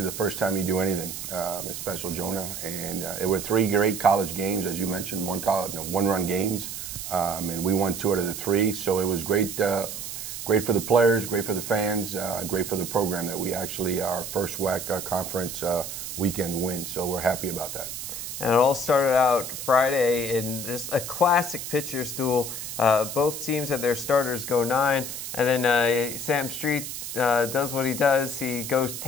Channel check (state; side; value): noise; right; hiss, 7 dB below the sound